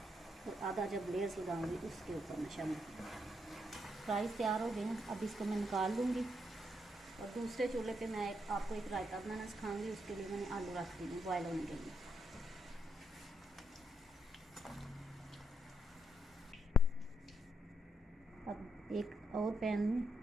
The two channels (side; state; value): both; normal; correlation 0.79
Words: और आधा जब लेयर्स लगाऊंगी उसके ऊपर मैं शामिल करूँगी। फ्राइज़ तैयार हो गए हैं, अब इसको मैं निकाल लूँगी और दूसरे चूल्हे पे मैं आपको एक रायता बनाना सिखाऊंगी। उसके लिए मैंने आलू रख दी हैं बॉयल होने के लिए। अब एक और पैन